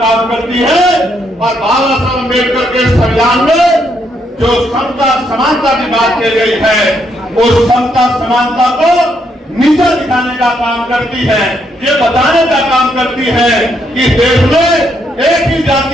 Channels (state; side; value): normal; both; correlation 0.75